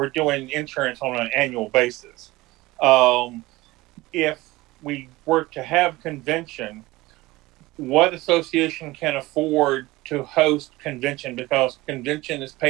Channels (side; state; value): left; quieter; 19.7 dB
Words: doing insurance on an annual basis. If we were to have convention, what association can afford to host convention? Because convention is